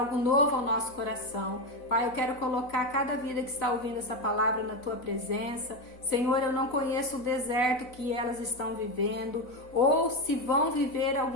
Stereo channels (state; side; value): late; right; 3.9 ms